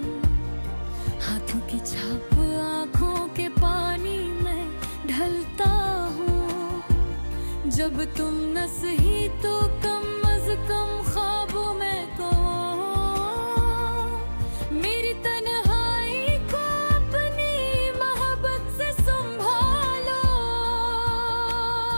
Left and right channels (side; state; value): both; inverted; correlation -1.00